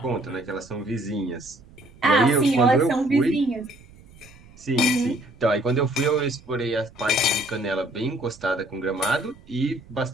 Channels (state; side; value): noise; right; rumble, 23 dB below the sound